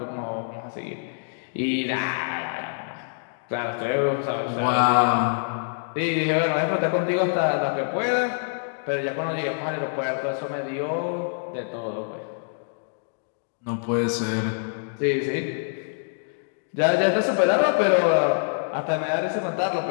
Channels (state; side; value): silent; right; digital silence